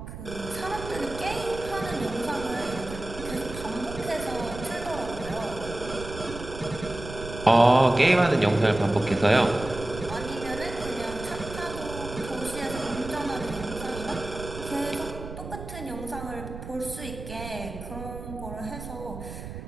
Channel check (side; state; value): right; noise; rumble, 10 dB below the sound